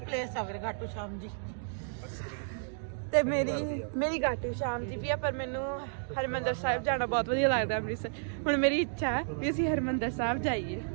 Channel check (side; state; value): left; silent; digital silence